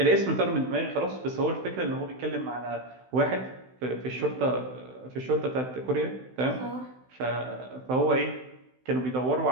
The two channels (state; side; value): late; left; 16 ms